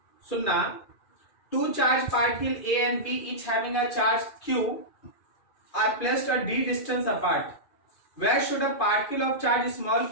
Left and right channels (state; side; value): late; right; 2.4 ms